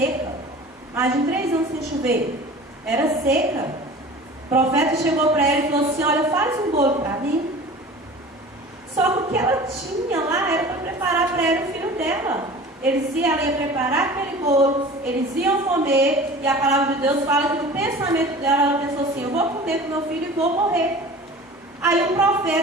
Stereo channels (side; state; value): both; normal; correlation 0.40